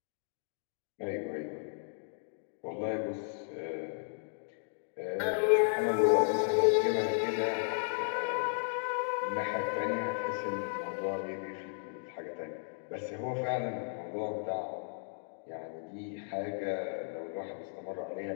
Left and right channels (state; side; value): silent; right; digital silence